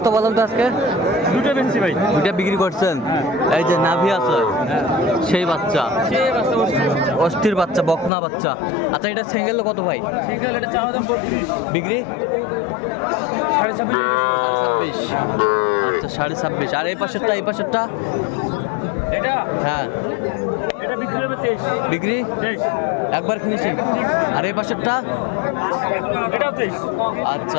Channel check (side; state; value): right; drops out; at 8.1 s